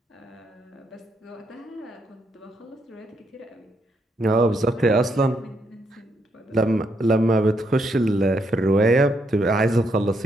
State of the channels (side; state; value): both; normal; correlation 0.77